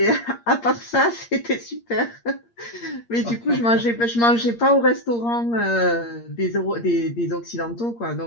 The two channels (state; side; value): late; right; 8.6 ms